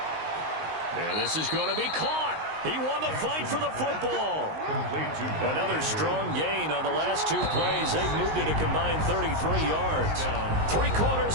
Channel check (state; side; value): late; left; 19 ms